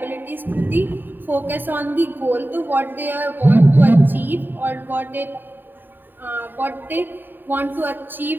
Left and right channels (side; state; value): left; late; 0.093 ms